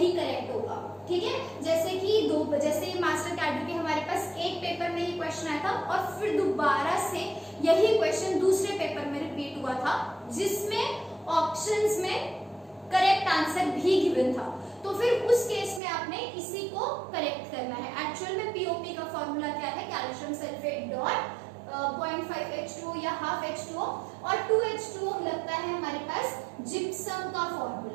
करेक्ट होगा, ठीक है। जैसे मास्टर कैडर के हमारे पास एक पेपर में ये क्वेश्चन आया था और फिर दोबारा से यही क्वेश्चन दूसरे पेपर में रिपीट हुआ था, जिसमें ऑप्शंस में करेक्ट आंसर भी गिवन था, तो फिर उस केस में आपने इसी को करेक्ट करना है। एक्चुअल में पीओपी का फॉर्मूला क्या है, कैल्शियम सल्फेट डॉट 0.5 H2O या हाफ H2O, और 2 H2O लगता है हमारे पास जिप्सम का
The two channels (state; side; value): drops out; left; at 15.8 s